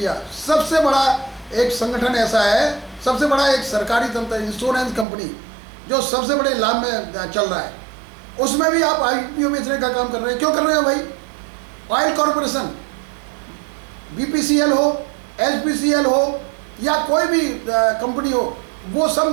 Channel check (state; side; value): drops out; left; at 5.1 s